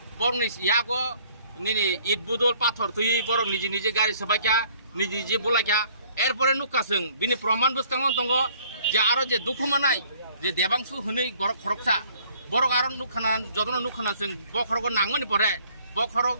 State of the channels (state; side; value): inverted; both; correlation -0.59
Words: बरं यागो निनि इट बुदल पाथर थुई बरं निजे गाड़ी सबाक्या निजे बोलाक्या एरपरे नुका जों बिनि प्रमाण बुस्थांगन दङ जे आरो जे दुखु मानाय जे देबांसु हनै गरक खरकसा बरक आरो नुखाना जतन नुखाना जों बखरगो नांगनि परे